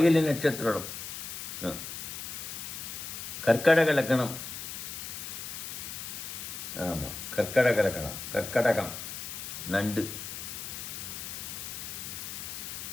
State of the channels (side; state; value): left; noise; hiss, 7 dB below the sound